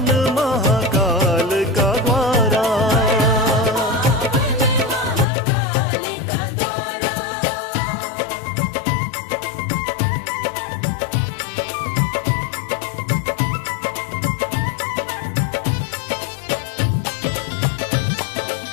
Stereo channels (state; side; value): drops out; right; at 5.2 s